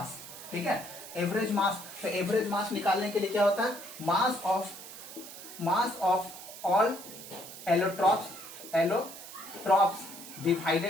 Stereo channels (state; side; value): noise; right; hiss, 13 dB below the sound